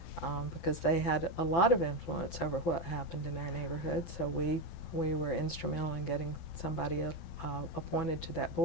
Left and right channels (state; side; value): late; right; 12 ms